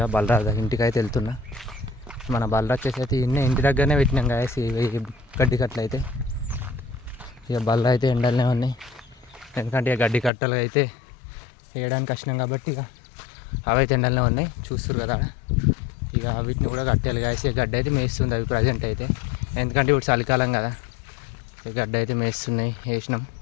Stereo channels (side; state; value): right; drops out; at 10.3 s